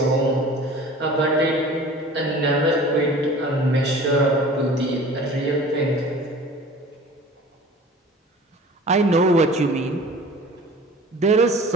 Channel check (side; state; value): both; normal; correlation 0.43